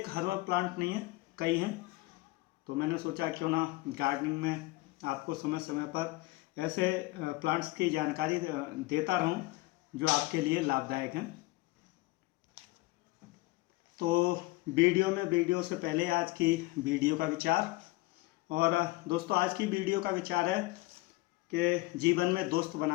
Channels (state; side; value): quieter; right; 21.3 dB